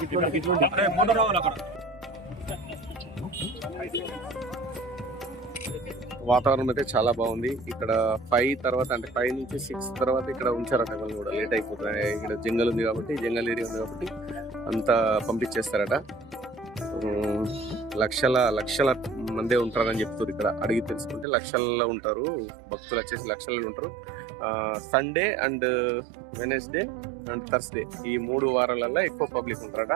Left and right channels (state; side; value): drops out; left; at 21.2 s